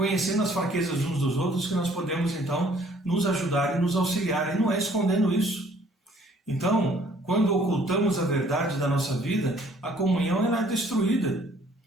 as fraquezas uns dos outros que nós podemos, então, nos ajudar e nos auxiliar. E não é escondendo isso. Então, quando ocultamos a verdade da nossa vida, a comunhão ela é destruída.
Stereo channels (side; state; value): both; normal; correlation 0.59